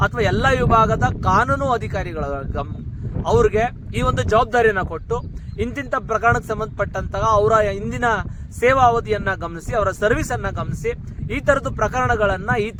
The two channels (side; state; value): both; identical; correlation 1.00